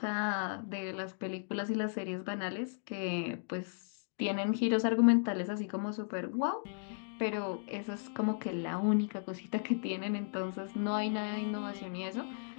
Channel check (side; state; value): right; silent; digital silence